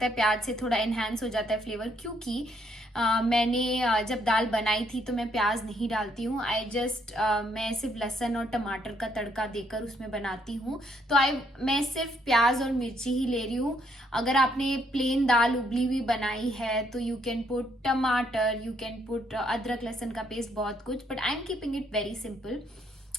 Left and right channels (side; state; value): both; normal; correlation 0.71